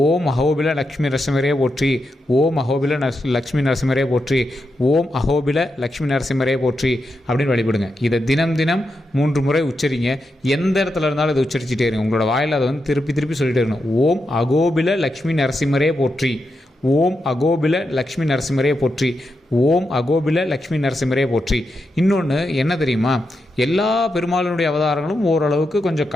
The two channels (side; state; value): both; normal; correlation 0.86